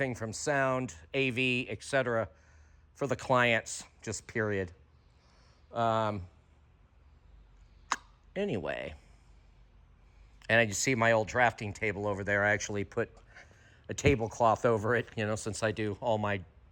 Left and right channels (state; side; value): identical; both; correlation 1.00